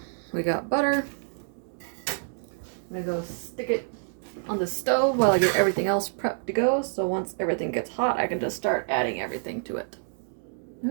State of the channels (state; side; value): silent; left; digital silence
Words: we got butter. I'm gonna go stick it on the stove while I get everything else prepped to go. So once everything gets hot, I can just start adding everything to it.